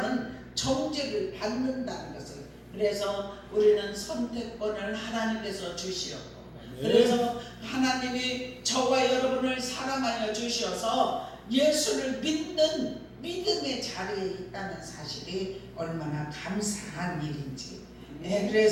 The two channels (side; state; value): both; identical; correlation 1.00